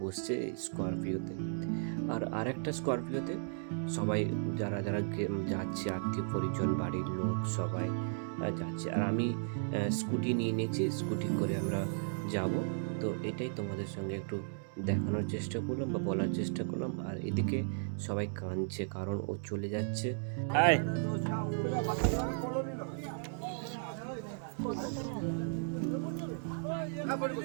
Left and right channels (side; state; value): left; silent; digital silence